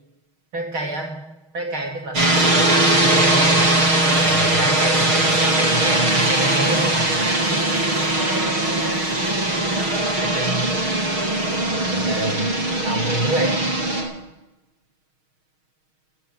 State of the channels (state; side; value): late; left; 6.4 ms